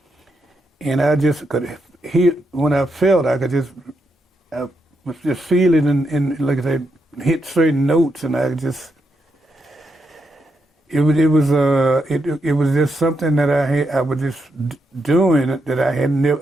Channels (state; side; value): normal; both; correlation 0.82